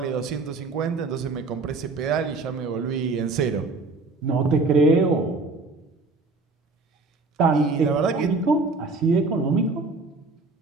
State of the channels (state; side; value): quieter; left; 3.7 dB